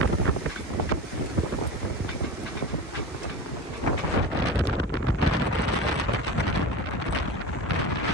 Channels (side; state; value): both; normal; correlation 0.29